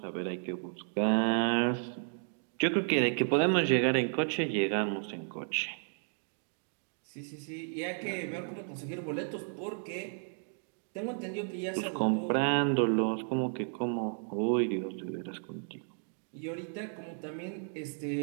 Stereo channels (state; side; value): silent; left; 56 dB below the other